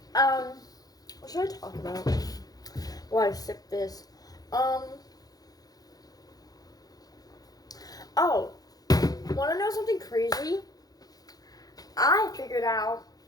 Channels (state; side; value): late; right; 0.18 ms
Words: what should I talk about? While I sip this. Oh, wanna know something crazy? I figured out